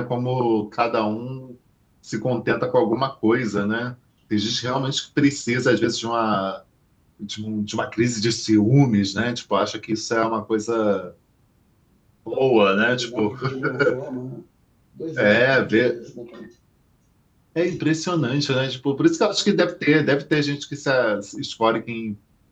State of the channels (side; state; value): both; identical; correlation 1.00